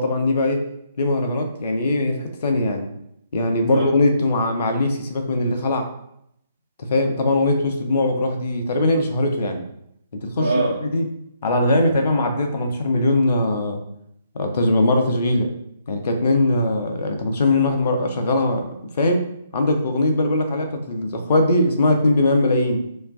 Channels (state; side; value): inverted; both; correlation -0.73